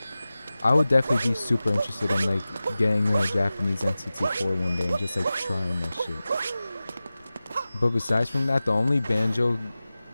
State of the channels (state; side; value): inverted; both; correlation -0.96